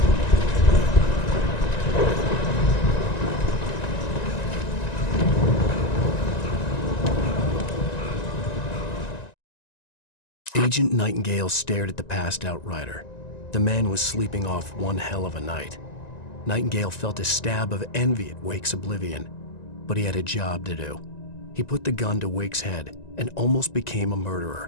Agent Nightingale stared at the passed-out rider. The man was sleeping off one hell of a night. Nightingale felt a stab of envy at Wake's oblivion, but he had a job to do. He put the gun to Wake's head and almost became a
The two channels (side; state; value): right; late; 1.9 ms